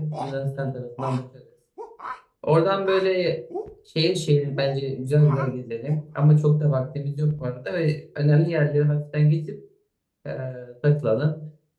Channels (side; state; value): both; identical; correlation 1.00